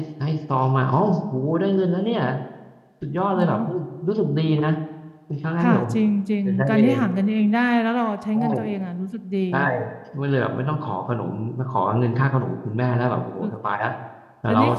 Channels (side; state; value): both; identical; correlation 1.00